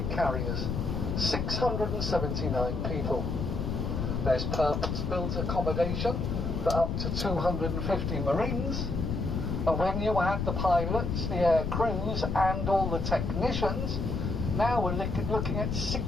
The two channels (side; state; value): left; noise; rumble, 1 dB below the sound